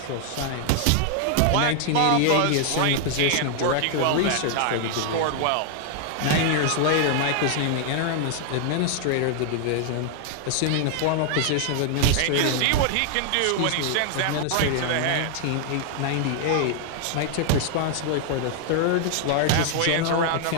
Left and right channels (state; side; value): different; both; correlation 0.00